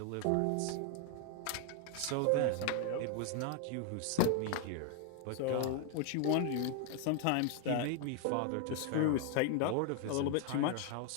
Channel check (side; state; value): both; different; correlation 0.00